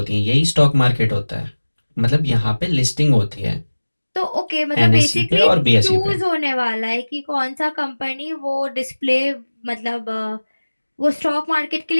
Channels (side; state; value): both; inverted; correlation -1.00